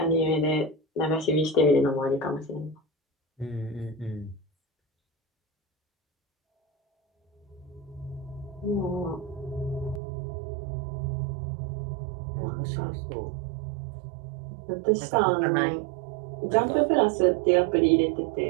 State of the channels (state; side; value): drops out; left; at 10.0 s